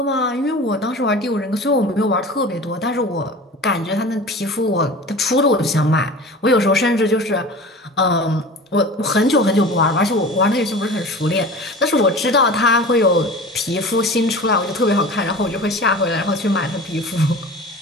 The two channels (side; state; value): both; normal; correlation 0.37